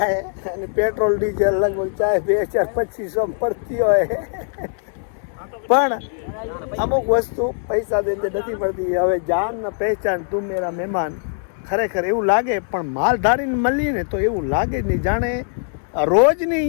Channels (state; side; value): silent; right; 65 dB below the other